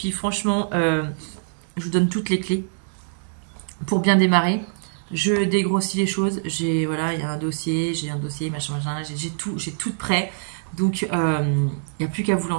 franchement, je vous donne toutes les clés pour bien démarrer. Je dégrossis les choses. Voilà, il y a un dossier, machin, j'ai tout prêt. Donc, il n'y a plus qu'à vous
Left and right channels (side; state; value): left; silent; digital silence